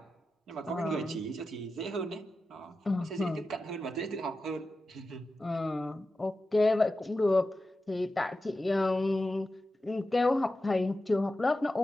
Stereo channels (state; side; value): normal; both; correlation 0.92